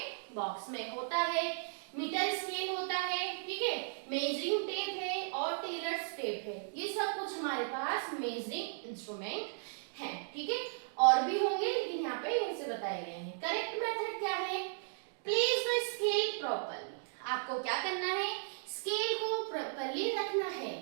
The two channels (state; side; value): silent; left; digital silence